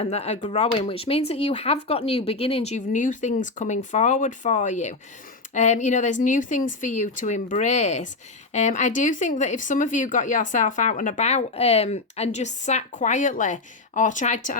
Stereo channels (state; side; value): quieter; right; 3.5 dB